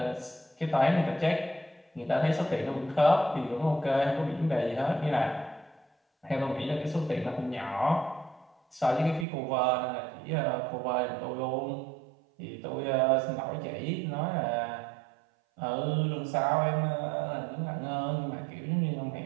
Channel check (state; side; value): drops out; left; at 9.2 s